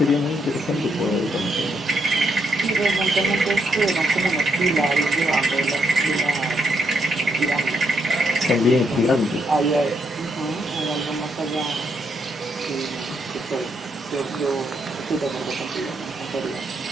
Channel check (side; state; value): both; normal; correlation 0.76